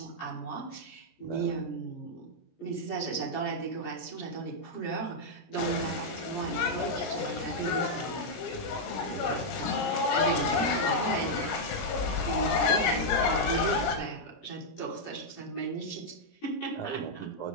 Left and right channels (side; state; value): right; late; 17 ms